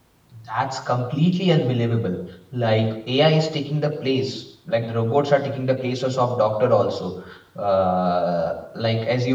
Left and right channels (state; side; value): identical; both; correlation 1.00